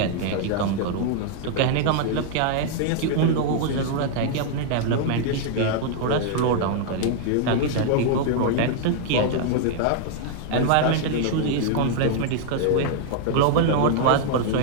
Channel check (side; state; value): both; different; correlation 0.00